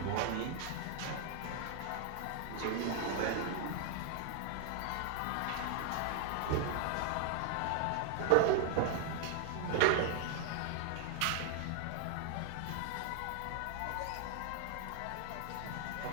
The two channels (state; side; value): different; both; correlation 0.00